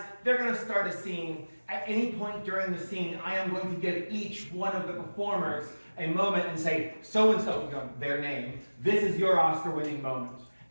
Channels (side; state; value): both; inverted; correlation -1.00